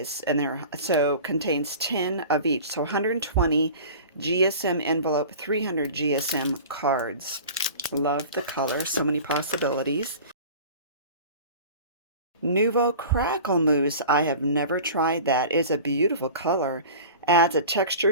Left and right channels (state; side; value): inverted; both; correlation -0.38